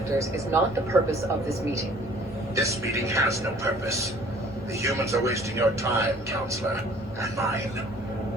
is not the purpose of this meeting. This meeting has no purpose. The humans are wasting your time, Counselor, and mine.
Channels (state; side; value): normal; both; correlation 0.54